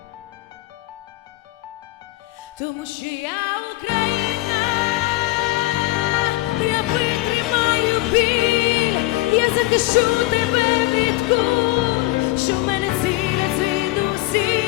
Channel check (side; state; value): right; quieter; 19.3 dB